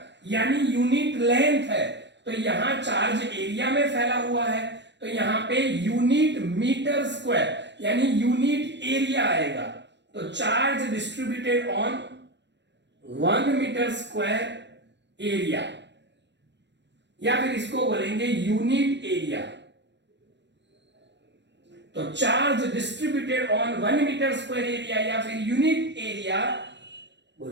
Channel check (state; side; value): late; left; 0.51 ms